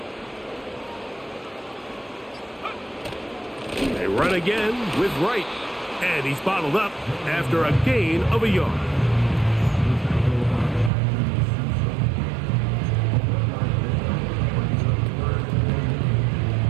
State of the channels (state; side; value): drops out; left; at 10.9 s